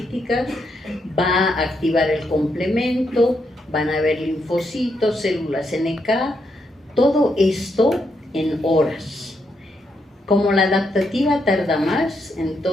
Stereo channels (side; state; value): both; normal; correlation 0.79